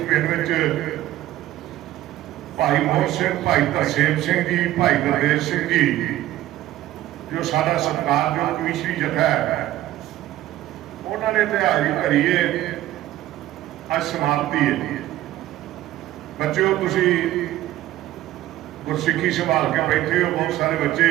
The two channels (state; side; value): quieter; left; 14.5 dB